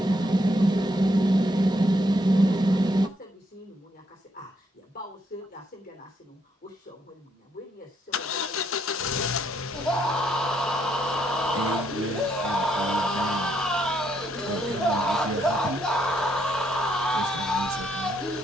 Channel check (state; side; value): normal; both; correlation 0.73